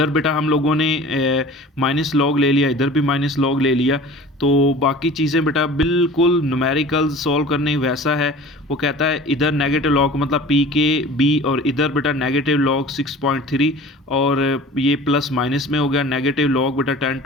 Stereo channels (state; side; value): normal; both; correlation 0.42